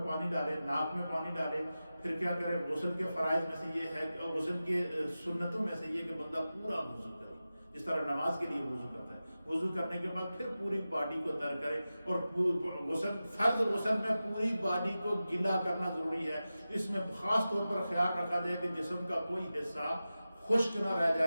پانی ڈالے، ناک میں پانی ڈالے، پھر کیا کرے، غسل کے فرائض میں سے یہ ہے، غسل کے سنتوں میں سے یہ کہ بندہ پورا وضو کرے، جس طرح نماز کے لیے وضو کرتا ہے، وضو کرنے کے بعد پھر پوری باڈی کو تر کرے، اور فرض غسل میں پوری باڈی کو گیلا کرنا ضروری ہے۔ اس میں خاص طور پر خیال رکھا جائے کہ جسم کا کوئی حصہ خشک نہ رہ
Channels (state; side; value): inverted; both; correlation -0.94